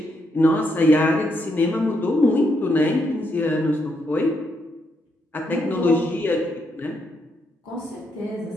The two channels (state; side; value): normal; both; correlation 0.78